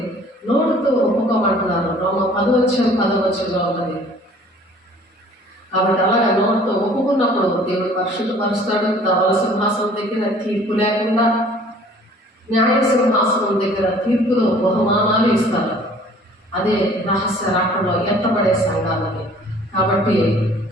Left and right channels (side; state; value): both; normal; correlation 0.52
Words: నోటితో ఒప్పుకోమంటున్నారు. రోమ 10:10 ఉంటుంది. కాబట్టి అలాగే నోటితో ఒప్పుకున్నప్పుడు దేవుడు పరిశుద్ధపరుస్తాడు. ధవల సింహాసనం దగ్గర తీర్పు లేకుండా న్యాయ సింహాసనం దగ్గర తీర్పులో బహుమానాలు ఇస్తారు. అదే రహస్య రాకడలో ఎత్తబడే సంఘాలకి. కాబట్టి